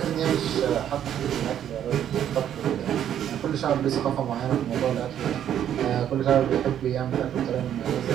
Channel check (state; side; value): quieter; left; 10.1 dB